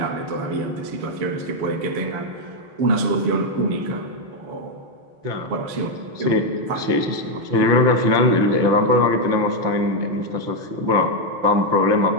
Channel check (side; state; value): left; late; 5.9 ms